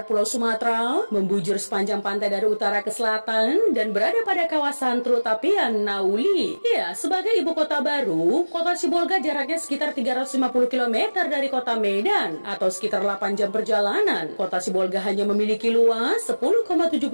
Pulau Sumatera, membujur sepanjang pantai dari utara ke selatan, dan berada pada kawasan Teluk Tapian, Nauli. Ya, sebagai ibu kota baru, kota Sibolga jaraknya sekitar 350 km dari kota Medan, atau sekitar 8 jam perjalanan. Kota Sibolga hanya memiliki luas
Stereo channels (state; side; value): inverted; both; correlation -1.00